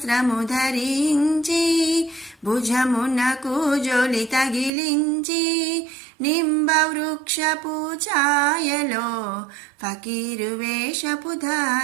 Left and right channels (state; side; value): drops out; left; at 4.7 s